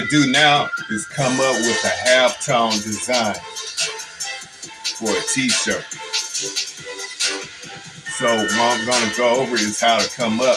do now is come up with a halftone design for a t-shirt. So what I'm going to go over is how to come up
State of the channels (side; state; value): both; identical; correlation 1.00